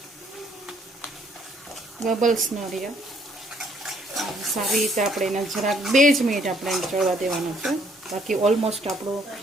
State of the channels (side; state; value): both; normal; correlation 0.66